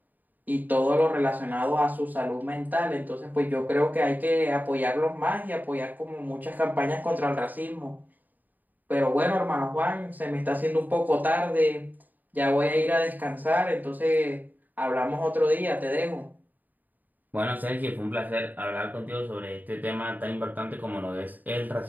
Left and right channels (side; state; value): left; late; 0.085 ms